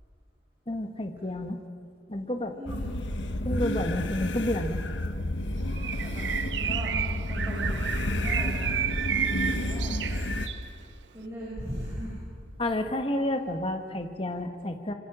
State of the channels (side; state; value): both; normal; correlation 0.59